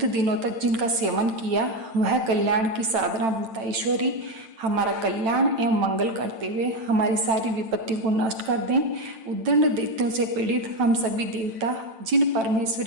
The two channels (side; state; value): left; late; 9.0 ms